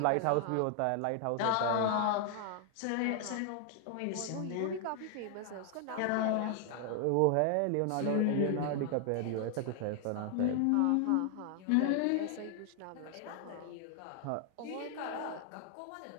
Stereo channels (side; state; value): both; different; correlation 0.00